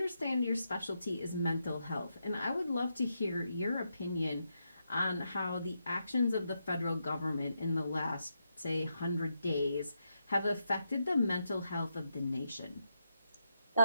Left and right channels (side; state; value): both; inverted; correlation -0.83